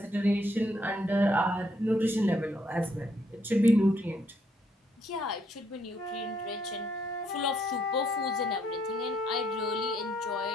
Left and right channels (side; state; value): both; normal; correlation 0.71